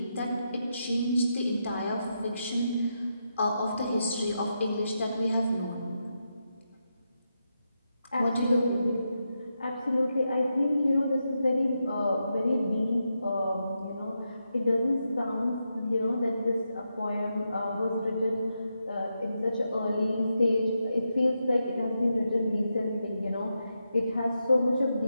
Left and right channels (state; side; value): inverted; both; correlation -0.85